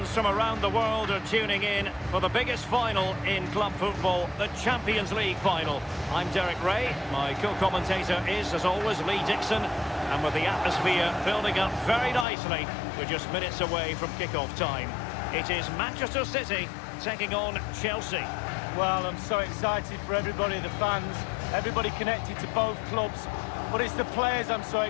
from around the world are tuning in for the biggest final in club football, the Champions League final. I'm Derek Ray, my co-commentator is, as always, Lee Dixon. And with the atmosphere building up very nicely, we're just minutes away from kick-off time. It is Manchester City taking on Chelsea. Well, I'm so excited for everybody, the fans, everybody connected to both clubs. But it's the players I'm so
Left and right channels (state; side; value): drops out; right; at 12.2 s